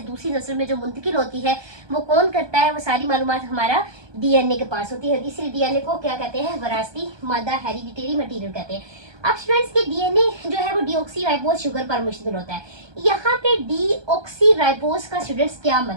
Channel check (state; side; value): late; left; 1.2 ms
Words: दूसरी नस्ल में जो मुंतकिल होती है, वो कौन करता है, वो सारी मालूमात हमारा DNA के पास होती है, इसलिए DNA को क्या कहते हैं, विरासती मादा, हेरिडिटरी मटेरियल कहते हैं। अब स्टूडेंट्स के DNA जो है वो डीऑक्सीराइबोस शुगर पर मुश्तमिल होता है। यहाँ पे डीऑक्सीराइबोस का स्टूडेंट्स क्या